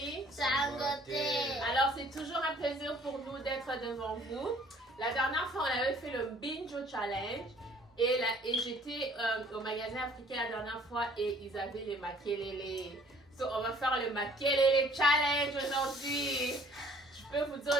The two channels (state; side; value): normal; both; correlation 0.56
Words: Sangote. Alors c'est toujours un plaisir pour nous d'être devant vous. La dernière fois on avait fait le Binjo Challenge et j'étais au magasin africain la dernière fois et ils avaient les makelele. So on va faire le makelele challenge aujourd'hui. Je peux vous dire